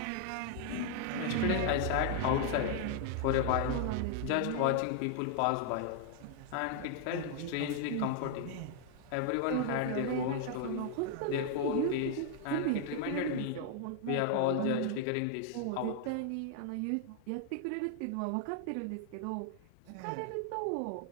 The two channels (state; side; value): different; both; correlation 0.00